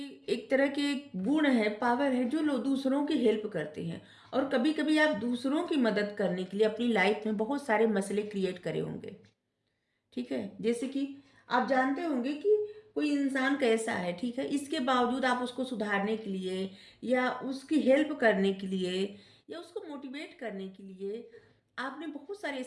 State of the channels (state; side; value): identical; both; correlation 1.00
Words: तरह के गुण है, पावर है, जो लोग दूसरों की हेल्प करते हैं। और कभी कभी आप दूसरों की मदद करने के लिए अपनी लाइफ में बहुत सारे मसले क्रिएट करे होंगे, ठीक है। जैसे कि आप जानते होंगे कि कोई इंसान कैसा है, ठीक है, इसके बावजूद आप उसको सुधारने के लिए या उसकी हेल्प करने के लिए या उसको मोटिवेट करने के लिए आपने बहुत सारे